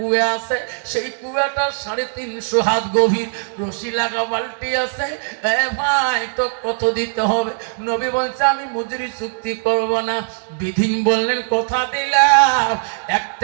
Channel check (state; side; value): silent; left; digital silence